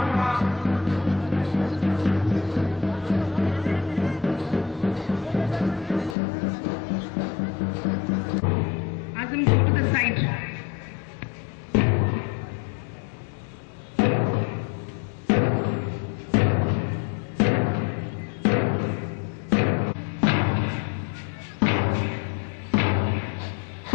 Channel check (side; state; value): right; drops out; at 6.2 s